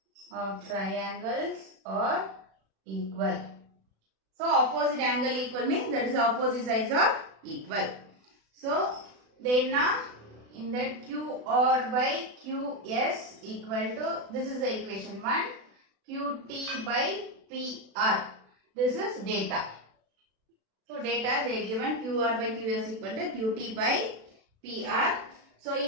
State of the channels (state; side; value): late; left; 36 ms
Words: are equal. So opposite angle equal means that is opposite sides are equal. So then now in that QR by QS equal to, this is the equation 1, QT by PR. This is data. So data they given QR by QS equal to QT by PR. So